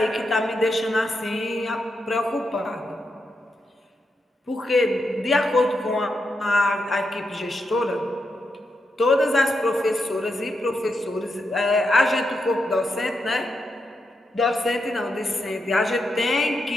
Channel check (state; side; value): normal; both; correlation 0.85